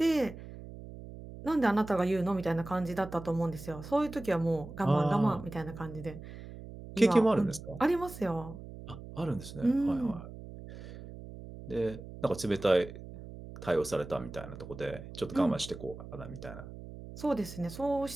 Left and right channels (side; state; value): right; noise; hum, 13 dB below the sound